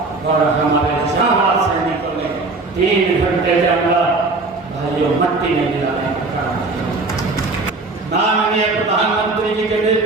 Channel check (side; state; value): left; quieter; 3.5 dB